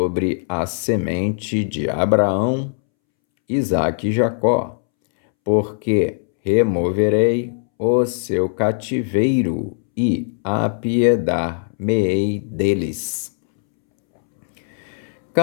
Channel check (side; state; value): right; silent; 66 dB below the other